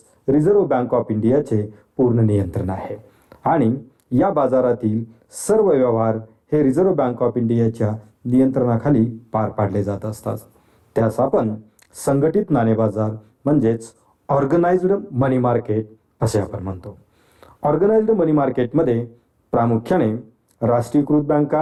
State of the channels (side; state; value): both; identical; correlation 1.00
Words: रिझर्व्ह बँक ऑफ इंडियाचे पूर्ण नियंत्रण आहे आणि या बाजारातील सर्व व्यवहार हे रिझर्व्ह बँक ऑफ इंडियाच्या नियंत्रणाखाली पार पाडले जात असतात. त्यास आपण संघटित नाणे बाजार म्हणजेच ऑर्गनाइज्ड मनी मार्केट असे आपण म्हणतो. ऑर्गनाइज्ड मनी मार्केटमध्ये प्रामुख्याने राष्ट्रीयकृत